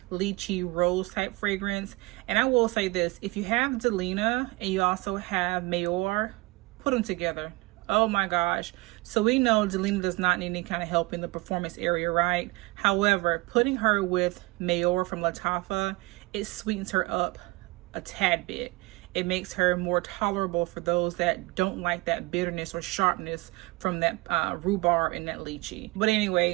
lychee rose type fragrance. And I will say this, if you have Delina and you also have Mayor, put them together. Oh my gosh. So we know Delina does not need any kind of help in the performance area, right? However, putting her with Mayor from Lattafa, it sweetens her up a tad bit. It makes her more tolerable for those that don't like that bitterness or sharpness from that rhubarb and that lychee. But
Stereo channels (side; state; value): left; quieter; 23.0 dB